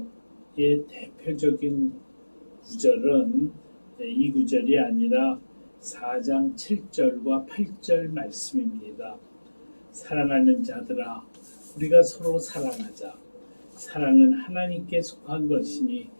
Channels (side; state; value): both; inverted; correlation -1.00